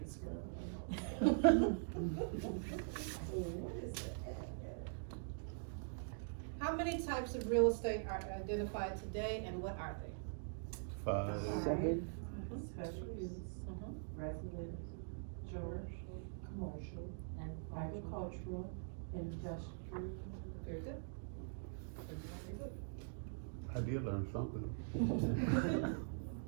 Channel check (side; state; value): left; silent; digital silence